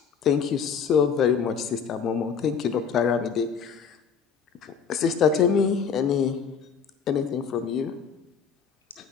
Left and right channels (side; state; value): right; quieter; 6.5 dB